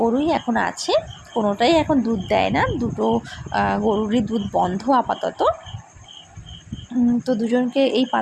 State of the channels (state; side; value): identical; both; correlation 1.00